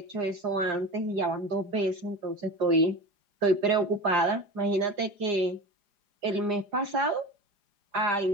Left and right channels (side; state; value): left; late; 4.9 ms